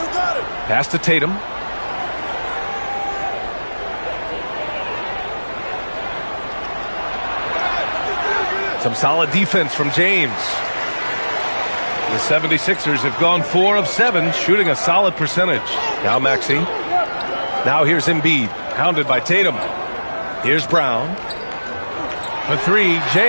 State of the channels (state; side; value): inverted; both; correlation -1.00